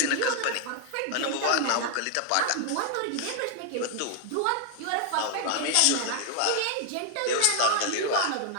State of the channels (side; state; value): both; different; correlation 0.00